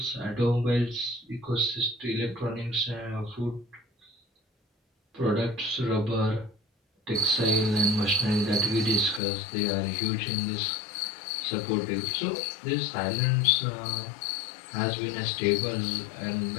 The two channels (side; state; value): right; drops out; at 9.2 s